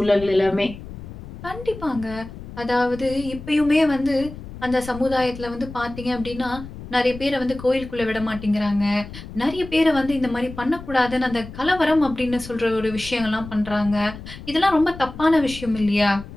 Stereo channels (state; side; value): noise; left; rumble, 13 dB below the sound